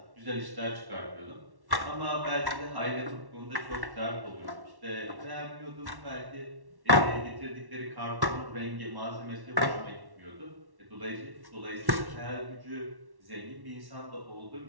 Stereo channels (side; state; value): left; late; 1.1 ms